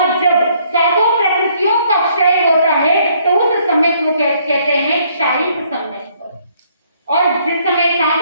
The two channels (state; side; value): inverted; both; correlation -0.66